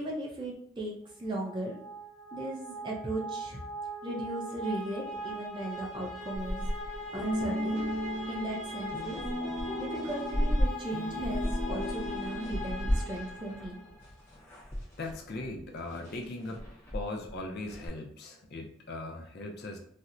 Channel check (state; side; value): normal; both; correlation 0.69